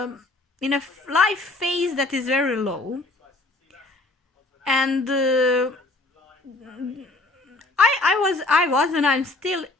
life phase that is very low, and I was and I'm still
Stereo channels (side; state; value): right; quieter; 3.1 dB